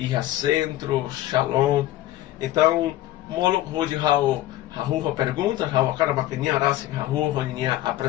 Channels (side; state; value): right; quieter; 14.8 dB